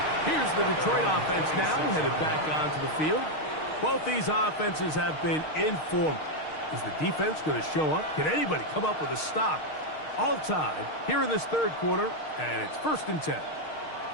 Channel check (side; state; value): right; late; 6.5 ms